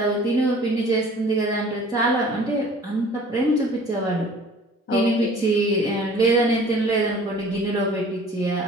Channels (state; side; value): normal; both; correlation 0.49